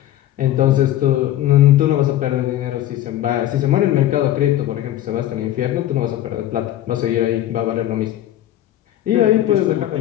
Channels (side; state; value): right; quieter; 13.0 dB